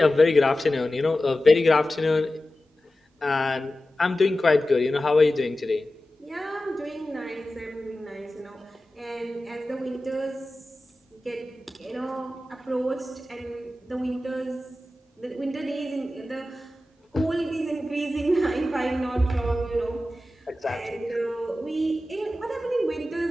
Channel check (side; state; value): both; normal; correlation 0.94